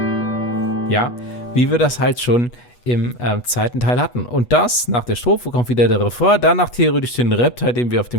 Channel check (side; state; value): right; late; 8.2 ms